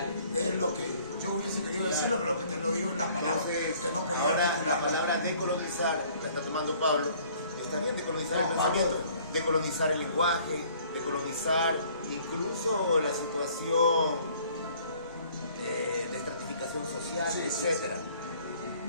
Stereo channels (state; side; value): inverted; both; correlation -0.57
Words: Es lo que yo hubiese querido decirlo, pero lo que te lo digo en las palabras que no podía Ahora, la articular. palabra decolonizar la está tomando Pablo. Está bien decolonizar el pensamiento, decolonizar el lenguaje, decolonizar incluso la situación de estratificación social, etcétera.